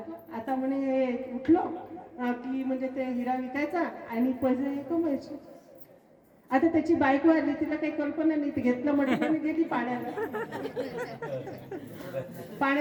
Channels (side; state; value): both; identical; correlation 1.00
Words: आता म्हणे उठलो की म्हणजे ते हिरा विकायचा आणि पैसे कमवायचे. आता त्याची बायको आली, तिला काही कल्पना नाही, ती घेतलं मडक्याने गेली